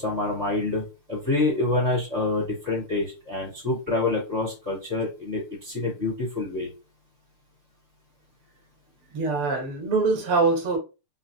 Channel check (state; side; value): late; left; 6.8 ms